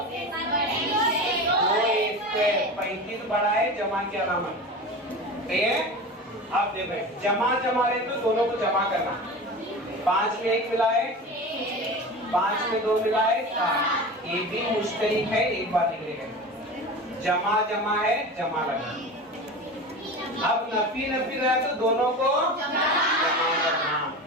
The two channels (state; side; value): normal; both; correlation 0.31